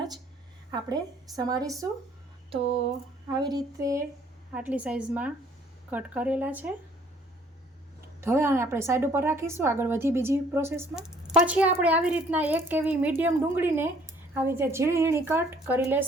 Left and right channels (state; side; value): normal; both; correlation 0.59